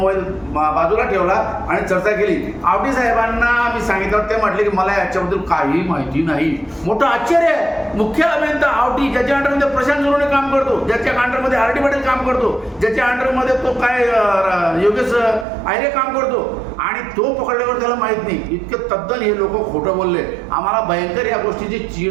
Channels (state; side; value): drops out; left; at 15.5 s